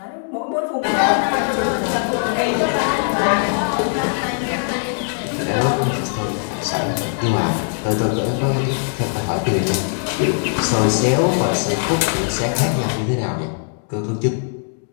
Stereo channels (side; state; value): right; silent; 66 dB below the other